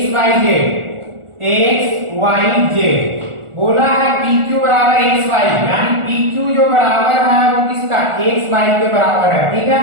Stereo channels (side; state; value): left; late; 1.4 ms